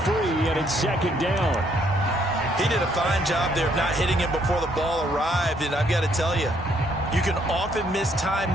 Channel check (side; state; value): both; normal; correlation 0.69